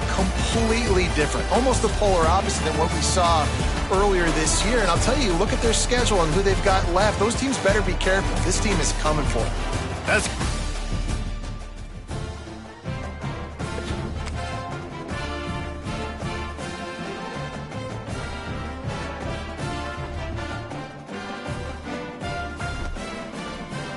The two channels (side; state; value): both; identical; correlation 1.00